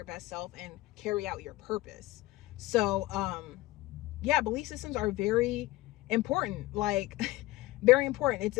best self and carry out your purpose. So, yeah, belief systems are very important, like very important.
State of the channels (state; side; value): quieter; right; 18.5 dB